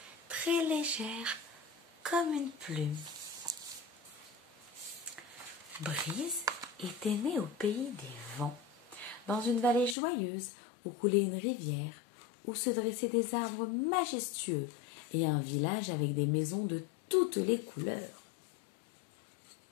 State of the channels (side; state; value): right; drops out; at 10.0 s